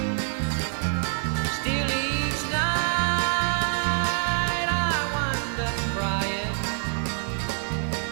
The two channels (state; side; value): silent; left; 61 dB below the other